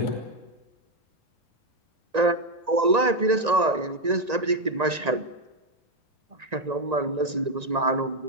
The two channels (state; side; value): late; left; 1.9 ms